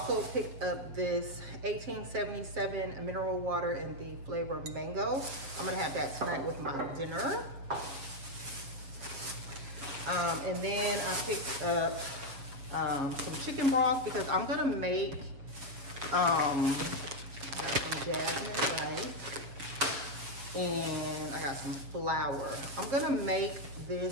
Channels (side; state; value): left; late; 7.3 ms